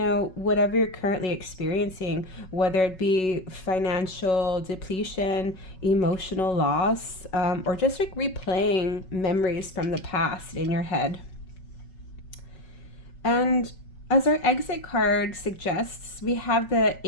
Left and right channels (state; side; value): late; right; 5.4 ms